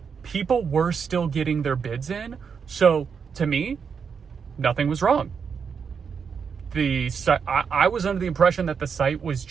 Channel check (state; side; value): quieter; left; 6.3 dB